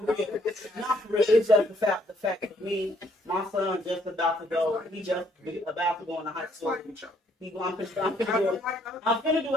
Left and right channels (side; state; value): both; normal; correlation 0.67